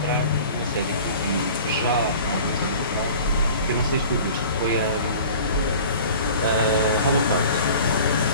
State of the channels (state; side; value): inverted; both; correlation -0.43